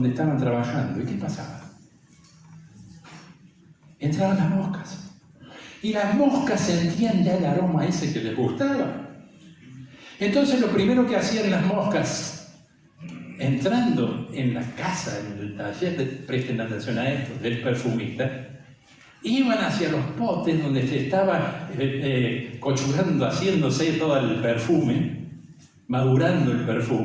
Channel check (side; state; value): both; identical; correlation 1.00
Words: estaban trabajando. ¿Y qué pasaba? Entraban las moscas. Y las moscas sentían ya el aroma ese que les gustaba. Entonces lo primero que hacían las moscas, entrando en la casa, en el taller, presten atención a esto, del perfumista, iban hacia los potes donde se estaba cochurando, haciéndose todo el perfume, madurando el